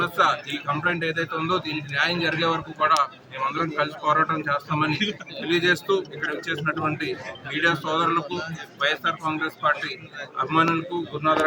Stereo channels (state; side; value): identical; both; correlation 1.00